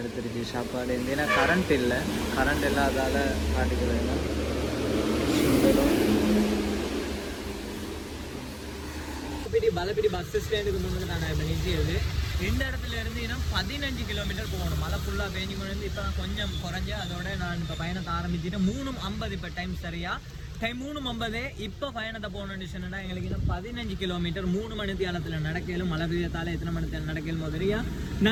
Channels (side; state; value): both; identical; correlation 1.00